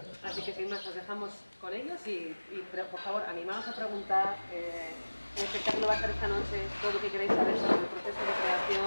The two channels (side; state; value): both; inverted; correlation -1.00